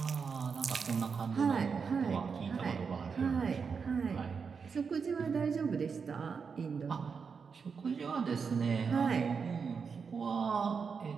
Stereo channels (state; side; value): quieter; left; 5.7 dB